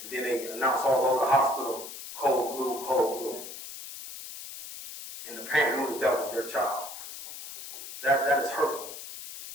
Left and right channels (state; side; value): noise; left; hiss, 11 dB below the sound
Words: and then they announce all over the hospital, cold blue, cold blue. And the parent knew that was their child. That is hurtful.